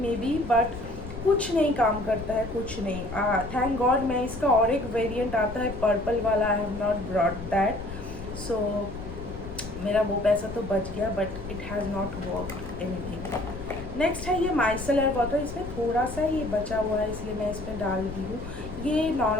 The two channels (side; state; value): left; noise; rumble, 11 dB below the sound